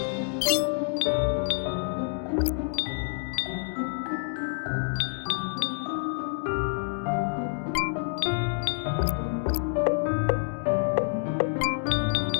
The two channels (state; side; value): silent; right; 57 dB below the other